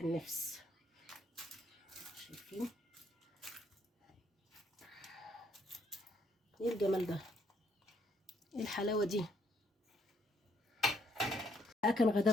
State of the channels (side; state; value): both; normal; correlation 0.70